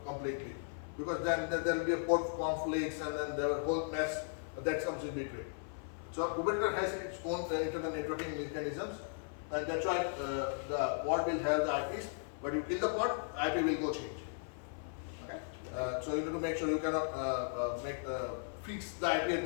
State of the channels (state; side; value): silent; right; 53 dB below the other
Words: completely, because then there will be a port conflicts, and then there will be a whole mess that comes in between. So Kubernetes has its own internal networking mechanisms, and that's why the pod will have the IPs. But you kill the pod, IP will go change. Okay, so you need to make sure you cannot fix the IP at